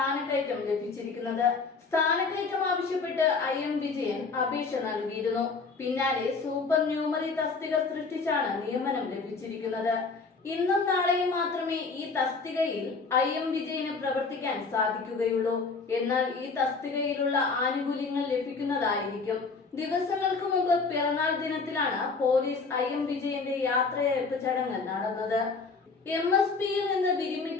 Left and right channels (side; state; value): right; quieter; 4.4 dB